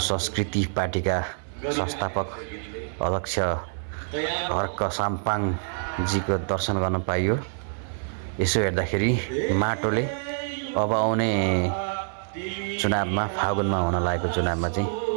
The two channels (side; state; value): left; silent; 60 dB below the other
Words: संस्कृति पार्टीका संस्थापक अध्यक्ष हर्क साम्पाङजीको दर्शन गर्न पाइयो। यसो हेर्दाखेरि माटोले अब आउने चुनावमा फागुनमा हुन लागेको चुनावमा चाहिँ